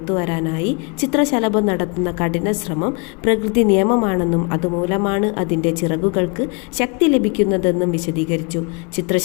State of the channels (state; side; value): quieter; right; 34.5 dB